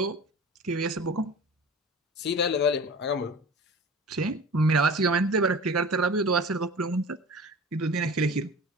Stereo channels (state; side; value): normal; both; correlation 0.37